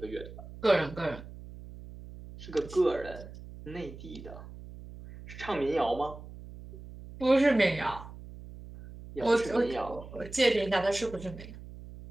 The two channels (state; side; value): noise; right; hum, 15 dB below the sound